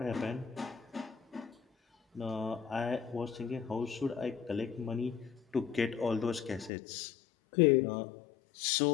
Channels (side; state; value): right; drops out; at 6.7 s